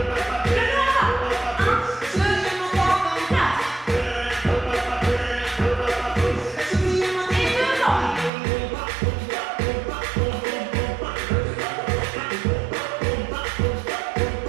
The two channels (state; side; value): drops out; left; at 8.3 s